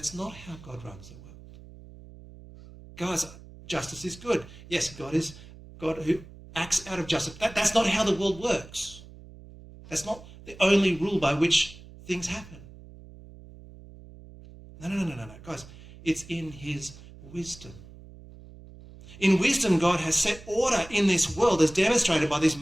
not how God runs the world. Guys, justice is good. Yes, God is God who acts out of justice. That's not how the world works. That's not the only rule by which things happen. No. Guys, it's in his wisdom. In wisdom, God has set order in this world as demonstrated by these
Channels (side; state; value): right; noise; hum, 19 dB below the sound